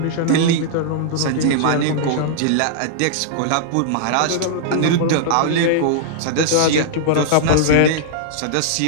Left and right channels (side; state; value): both; different; correlation -0.02